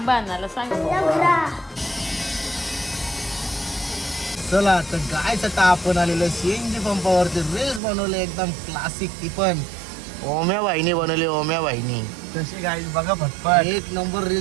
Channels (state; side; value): drops out; left; at 7.8 s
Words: आणायला सांग. चला तर गायच आता आपण आलेलो सीएनजी पंपावरती रील्स बनवले एकदम क्लासिक. ती पण ओम्या बाईनी बनवली. ओम्या बाईनी तशी गाईज बघा फटफट 1 नंबर